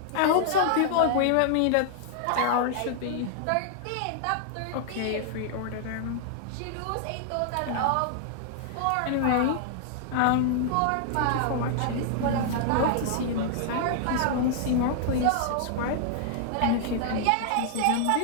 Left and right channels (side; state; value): both; different; correlation -0.01